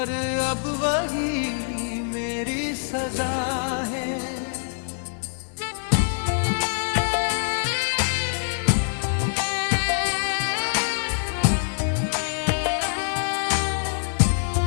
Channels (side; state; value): right; silent; digital silence